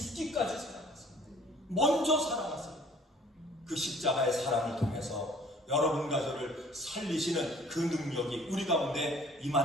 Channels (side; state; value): both; normal; correlation 0.54